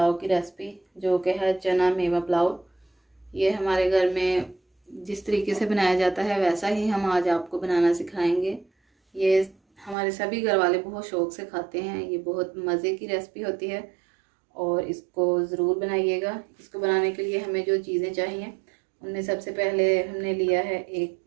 की रेसिपी, जो कि है चना मेवा पुलाव। ये हमारे घर में जिस तरीके से बनाया जाता है वैसा ही हम आज आपको बनाना सिखाएंगे। ये हमारे सभी घर वाले बहुत शौक़ से खाते हैं। ये बहुत मज़े की रेसिपी होती है और इसको ज़रूर बनाइएगा। इसको बनाने के लिए हमें जो चीज़ें चाहिए उनमें सबसे पहले हमने लिया है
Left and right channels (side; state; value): left; drops out; at 10.0 s